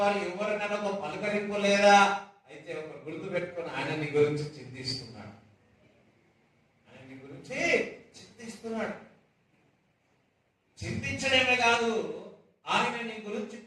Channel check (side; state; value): both; identical; correlation 1.00